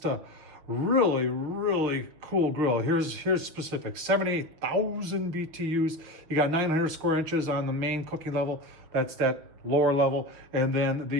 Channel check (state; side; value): late; left; 6.3 ms